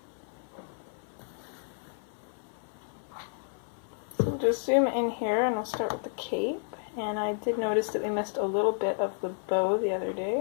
So we'll just zoom in here and we'll start with the cape. And I did notice that we missed a little bit of the bow the other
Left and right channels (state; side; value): silent; right; 57 dB below the other